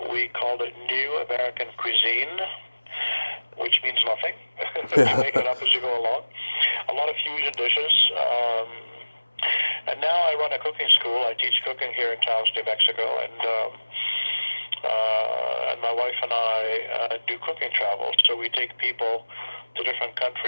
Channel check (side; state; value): both; inverted; correlation -1.00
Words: we called it New American Cuisine, which means nothing. You make it up as you go along. A lot of fusion dishes. And now I run a cooking school. I teach cooking here in Taos, New Mexico, and my wife and I do cooking travel. So we take people to different